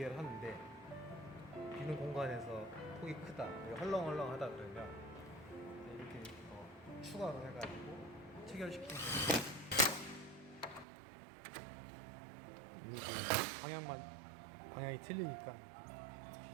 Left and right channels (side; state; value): left; drops out; at 10.9 s